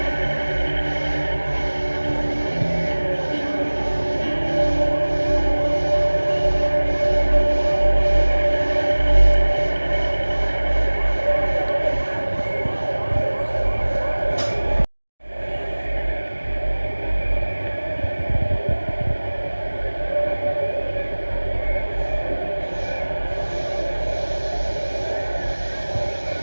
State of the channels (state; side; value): inverted; both; correlation -1.00